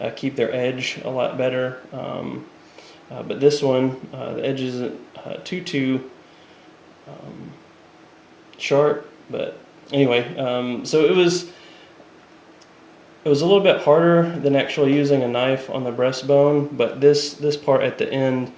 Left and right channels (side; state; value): both; identical; correlation 1.00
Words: keep their edge a lot better, but this one, the edge isn't too sharp. But anyway, so it was a little bit harder than actually using a knife on the breastbone, but this part at the end